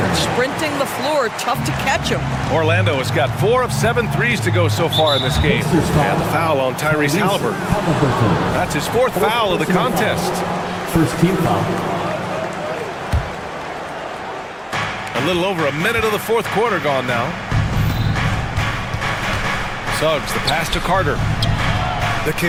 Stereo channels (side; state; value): both; identical; correlation 1.00